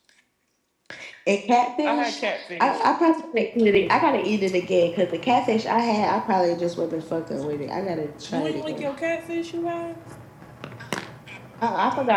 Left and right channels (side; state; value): both; identical; correlation 1.00